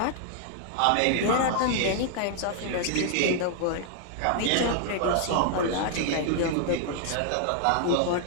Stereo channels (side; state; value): both; different; correlation 0.00